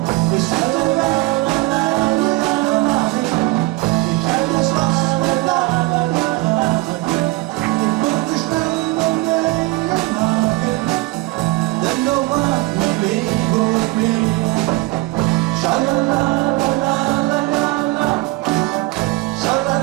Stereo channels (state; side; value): quieter; left; 21.3 dB